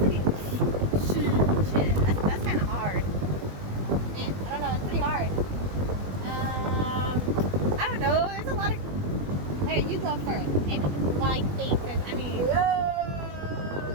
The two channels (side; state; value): left; late; 21 ms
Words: Shit, that's kind of hard. Man, I don't know. It's pretty hard. I don't know. There's a lot of. Hey, you go first. Maybe while I think, because I mean.